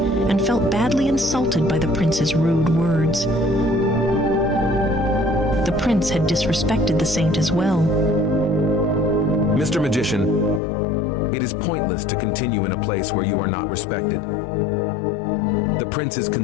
felt badly insulted by the prince's rude words. The prince had disrespected the saint as well. Mr. Magician, it is pointless to continue in a place where you are not respected. The prince is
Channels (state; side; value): drops out; right; at 10.6 s